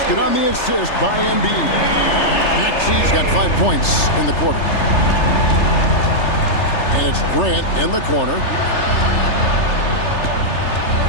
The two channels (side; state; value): right; late; 3.3 ms